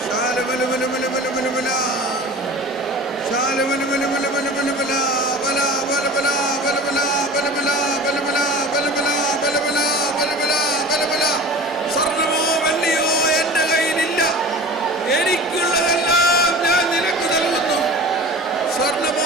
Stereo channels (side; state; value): both; normal; correlation 0.37